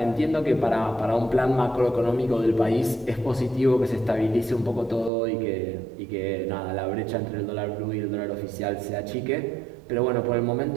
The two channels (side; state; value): left; drops out; at 5.1 s